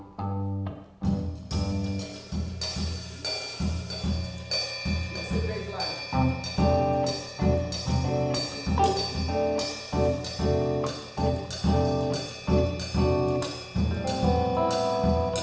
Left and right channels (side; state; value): both; identical; correlation 1.00